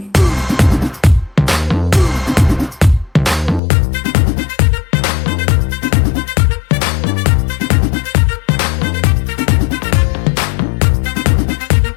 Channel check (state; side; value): drops out; right; at 3.6 s